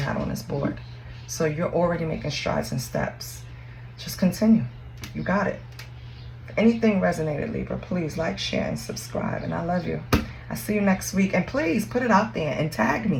on this board. So you're already making strides and steps. Just continue. You got it. If anything resonated, Libra, please like, share, and subscribe. And I love you. I'll see you next week. And please put it out there and tag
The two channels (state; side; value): identical; both; correlation 1.00